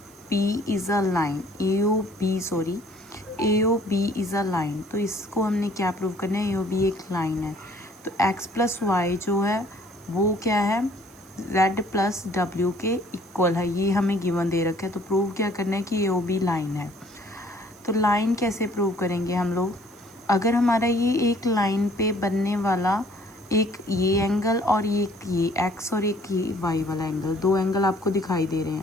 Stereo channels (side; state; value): right; noise; hiss, 26 dB below the sound